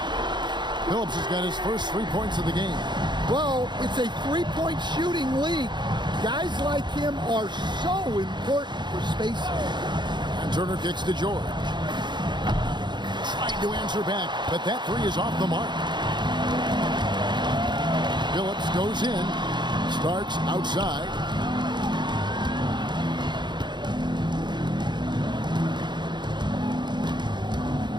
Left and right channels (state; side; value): late; left; 0.22 ms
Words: Phillips has got his first 3 points of the game. Well, it's a 3-point shooting league. Guys like him are so important for spacing. And Turner kicks to George. Trying to answer back, but that 3 is off the mark. Phillips goes in. Starks outside.